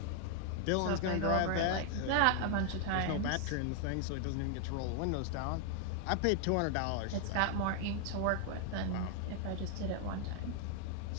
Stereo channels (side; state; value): both; different; correlation 0.00